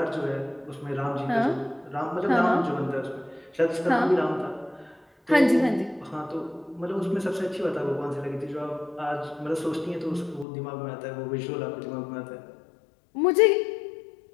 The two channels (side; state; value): right; drops out; at 10.5 s